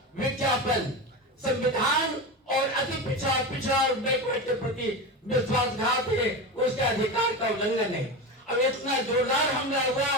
विज्ञापन संविधान और अति पिछड़ा और बैकवर्ड के प्रति विश्वासघात है, उसके अधिकार का उल्लंघन है। अब इतना जोरदार हमला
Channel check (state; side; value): normal; both; correlation 0.22